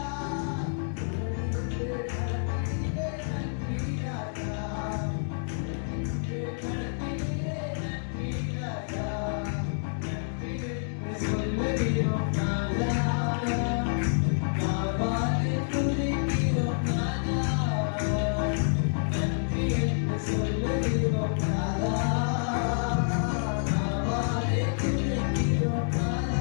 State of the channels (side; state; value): right; silent; digital silence